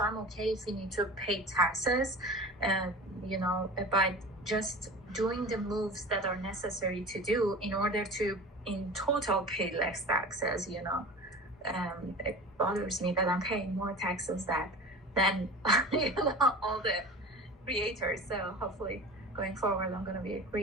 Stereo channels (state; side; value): normal; both; correlation 0.35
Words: I'm okay if you need to pay taxes, by just doing the moves that are necessary to do in order to, in total, pay less taxes. It bothers me that I'm paying more taxes than all the creators. So hopefully, going forward, I'm going to be a